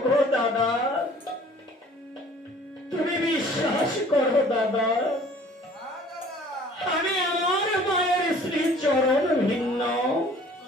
দাদা, তুমি বিশ্বাস করো দাদা, আমি আমার মায়ের শ্রী চরণ ভিন্ন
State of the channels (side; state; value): both; normal; correlation 0.52